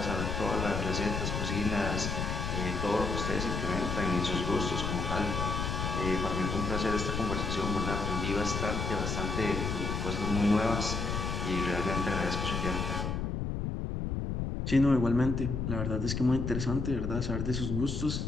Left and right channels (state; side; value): noise; left; rumble, 2 dB below the sound